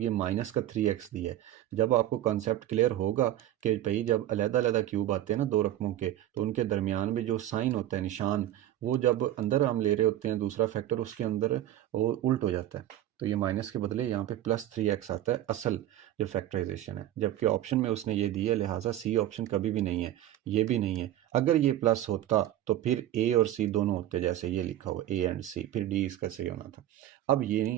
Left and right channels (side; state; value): left; quieter; 12.9 dB